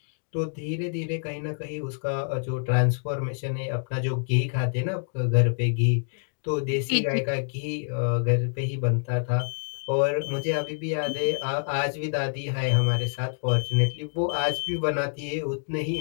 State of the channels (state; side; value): silent; right; 60 dB below the other